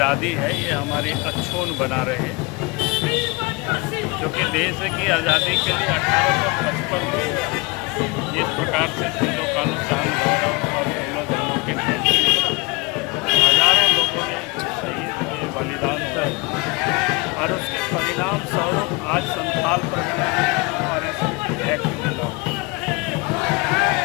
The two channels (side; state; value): right; quieter; 26.4 dB